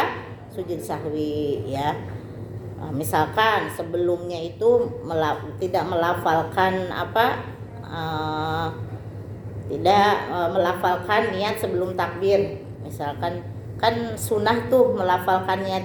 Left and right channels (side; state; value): both; identical; correlation 1.00